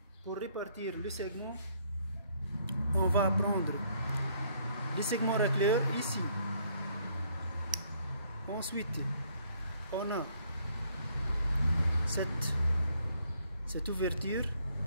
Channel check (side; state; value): both; inverted; correlation -0.66